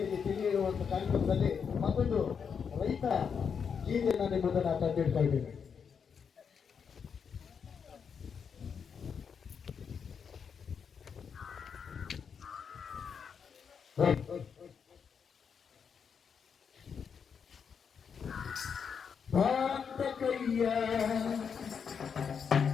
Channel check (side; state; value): right; quieter; 6.6 dB